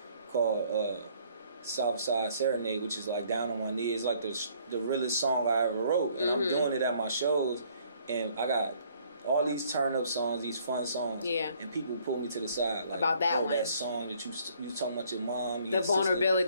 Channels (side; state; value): both; inverted; correlation -0.62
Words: called Southside Serenade, which is like Down on My Knees. It's like the realest song I ever wrote, and I'm doing it at my shows, and I got all these turn-up songs, these fun songs, and people pull me to the side like, about that one, that song that you talking about your mom, your the